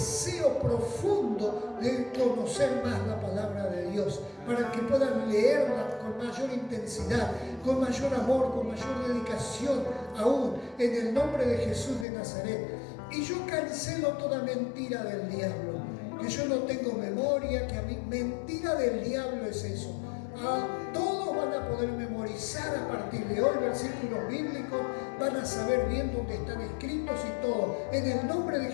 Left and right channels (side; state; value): right; drops out; at 12.1 s